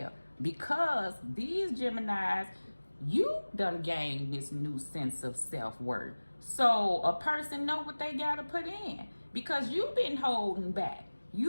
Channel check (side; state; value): both; inverted; correlation -1.00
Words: Because these Geminis, you done gained this new sense of self-worth. So a person know what they gotta put in because you've been holding back.